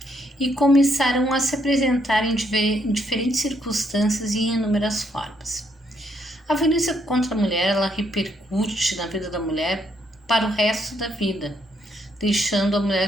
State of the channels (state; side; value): normal; both; correlation 0.73